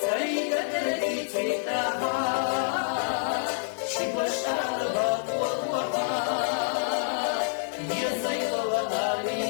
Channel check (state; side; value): silent; right; digital silence